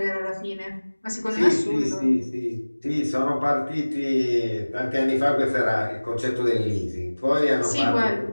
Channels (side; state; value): both; inverted; correlation -1.00